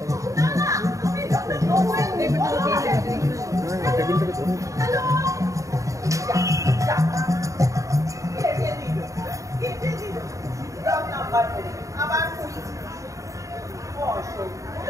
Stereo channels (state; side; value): late; left; 0.16 ms